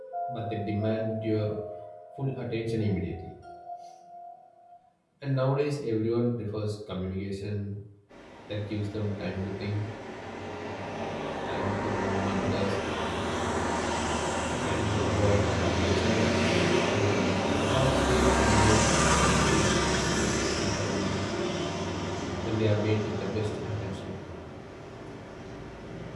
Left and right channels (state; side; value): identical; both; correlation 1.00